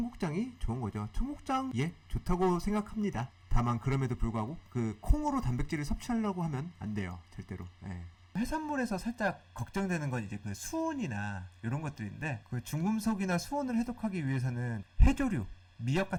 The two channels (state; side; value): identical; both; correlation 1.00